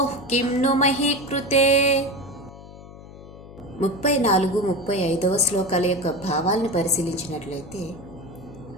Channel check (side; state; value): left; noise; hum, 17 dB below the sound